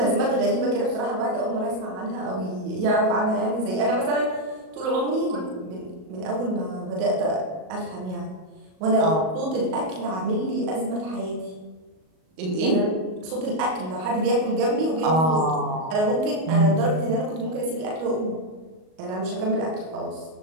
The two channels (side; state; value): left; late; 38 ms